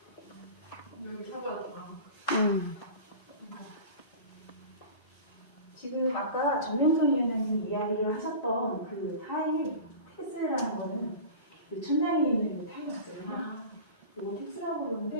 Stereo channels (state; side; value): inverted; both; correlation -0.35